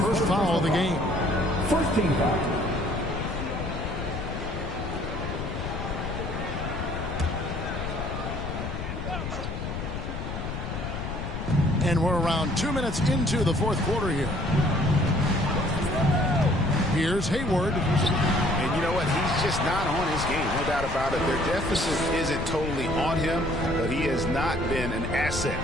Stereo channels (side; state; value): left; noise; rumble, 5 dB below the sound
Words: foul of the game. First team foul. And we're around 2 minutes into the fourth quarter here. Here's Hayward. And you know what? He's just not on his game. No doubt about it. Their deficit isn't totally on him, but he has not been an asset